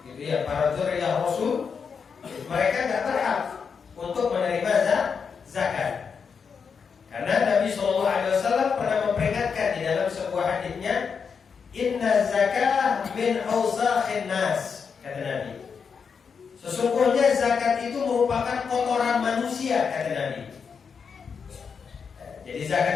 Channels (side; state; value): right; quieter; 6.1 dB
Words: gitu ya, para dzurriyyah Rasul, mereka tidak berhak untuk menerima zakat. Karena Nabi SAW pernah memperingatkan di dalam sebuah hadisnya, inna zakah min awsakhin nas, kata Nabi. Sesungguhnya zakat itu merupakan kotoran manusia, kata Nabi. Jadi